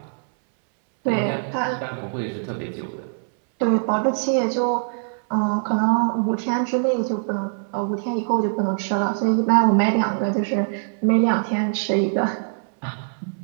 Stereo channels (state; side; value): silent; left; 62 dB below the other